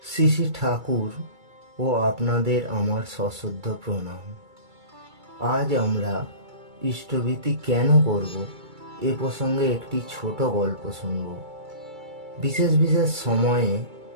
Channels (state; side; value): late; left; 2.3 ms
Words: শ্রী শ্রী ঠাকুর ও আপনাদের আমার সশ্রদ্ধ প্রণাম। আজ আমরা ইষ্টভীতি কেন করব এ প্রসঙ্গে একটি ছোট গল্প শুনব। বিশেষ বিশেষ সময়ে